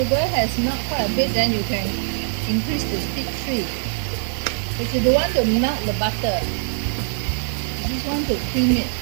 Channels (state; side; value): silent; left; digital silence